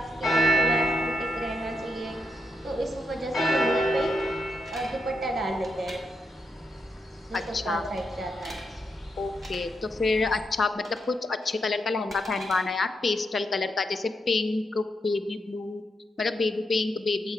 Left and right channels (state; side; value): normal; both; correlation 0.82